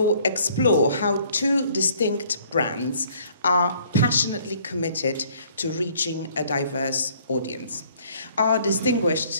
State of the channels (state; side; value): inverted; both; correlation -0.60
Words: explore how two distinct brands are passionately committed to reaching a diverse audience. Our